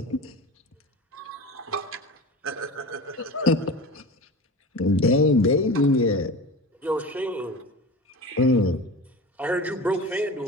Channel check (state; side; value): normal; both; correlation 0.32